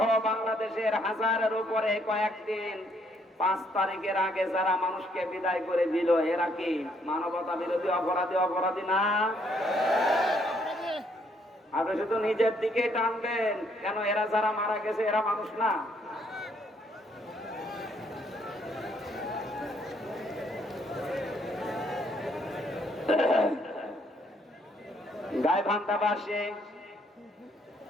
বাংলাদেশের হাজারের উপরে কয়েকদিন 5 তারিখের আগে যারা মানুষকে বিদায় করে দিল, এরা কি মানবতা বিরোধী অপরাধী না? আপনি শুধু নিজের দিকে টানবেন কেন? এরা যারা মারা গেছে এরা মানুষ না? গাইবান্ধাবাসী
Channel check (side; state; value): both; normal; correlation 0.69